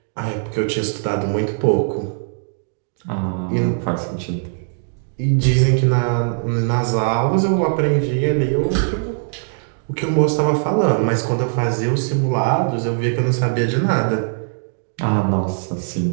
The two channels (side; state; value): left; silent; digital silence